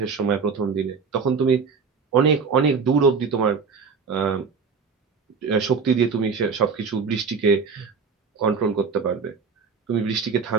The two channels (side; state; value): left; quieter; 5.4 dB